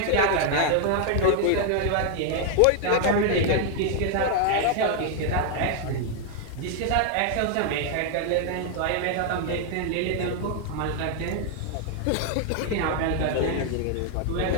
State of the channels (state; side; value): different; both; correlation 0.00